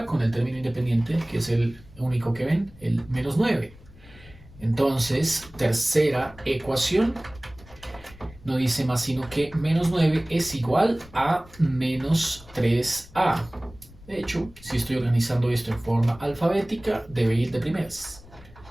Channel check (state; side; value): noise; left; rumble, 21 dB below the sound